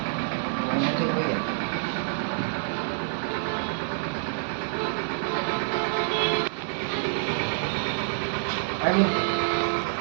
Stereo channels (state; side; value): silent; left; digital silence